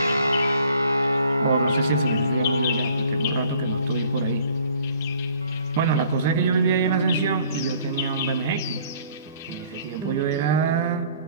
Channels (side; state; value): both; inverted; correlation -0.55